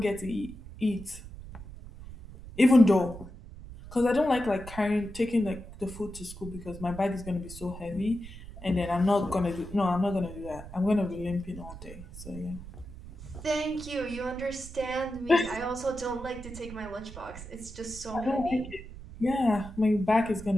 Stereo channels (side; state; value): right; noise; rumble, 14 dB below the sound